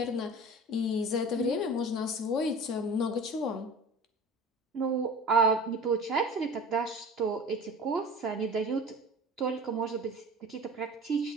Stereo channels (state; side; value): normal; both; correlation 0.38